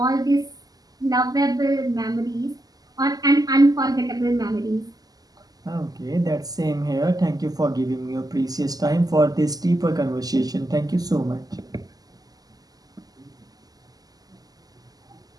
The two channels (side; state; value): left; late; 0.18 ms